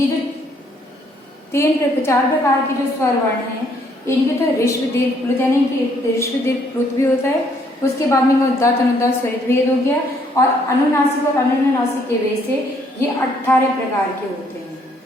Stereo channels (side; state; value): both; normal; correlation 0.67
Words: जो 4 प्रकार के जो स्वर वर्ण हैं, इनके तो ऋष्व दीर्घ प्लुत यानी कि ऋष्व दीर्घ प्लुत भी होता है, उसके बाद में उदात्त अनुदात्त स्वरित भेद हो गया, और अनुनासिक और अनुनासिक के भेद से ये 18 प्रकार के होते हैं।